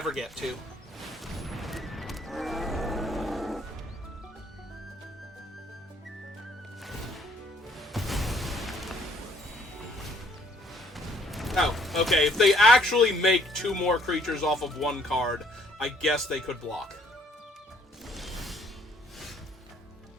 get to. Oh, okay, if they actually make 2 more creatures off of 1 card, I guess they could block.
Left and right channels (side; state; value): both; normal; correlation 0.64